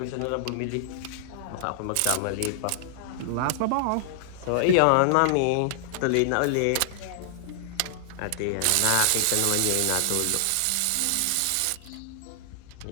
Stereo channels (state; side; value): different; both; correlation -0.01